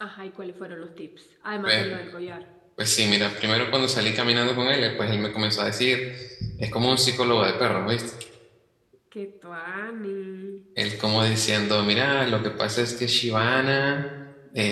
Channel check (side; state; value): both; identical; correlation 1.00